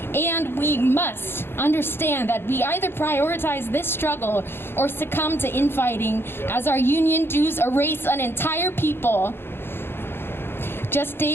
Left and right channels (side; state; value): right; late; 0.11 ms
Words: and we must understand that we either prioritize this struggle or succumb to infighting as our union dues erase an entire people. Just